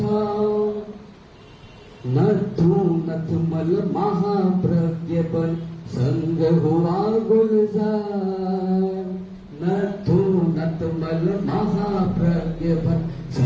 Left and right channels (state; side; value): identical; both; correlation 1.00